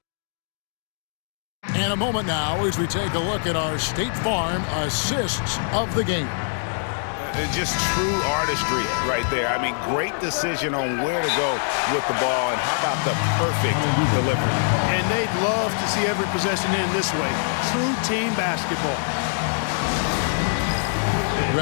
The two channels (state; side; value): silent; right; digital silence